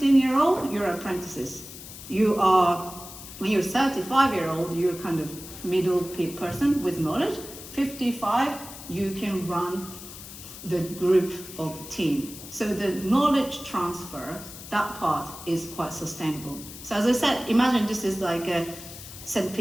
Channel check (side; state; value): left; noise; hiss, 14 dB below the sound